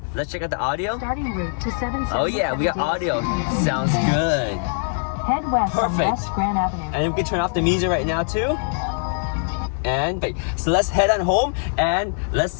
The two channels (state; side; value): silent; right; 59 dB below the other